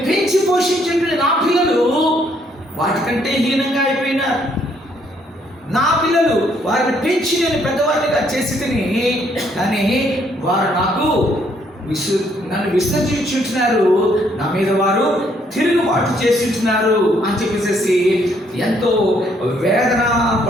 పెంచి పోషించిన నా పిల్లలు వాటికంటే హీనంగా అయిపోయినారు. నా పిల్లలు వారిని పెంచి నేను పెద్దవారిగా చేసి తిని, కానీ వారు నన్ను విసర్జించుంటున్నారు, నా మీద వారు తిరుగుబాటు చేసింటున్నారు అని చెప్పేసి ఎంతో వేదన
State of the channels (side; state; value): both; normal; correlation 0.69